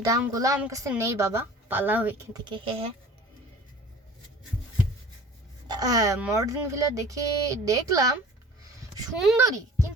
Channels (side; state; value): both; normal; correlation 0.45